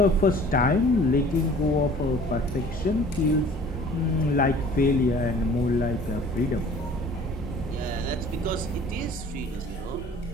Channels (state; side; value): normal; both; correlation 0.49